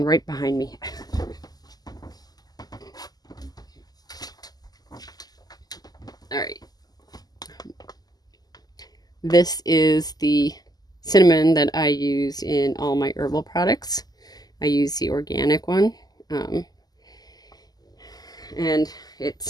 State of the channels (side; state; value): right; late; 0.19 ms